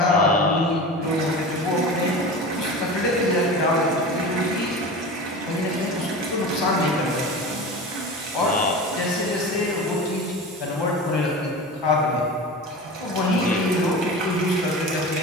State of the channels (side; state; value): both; normal; correlation 0.31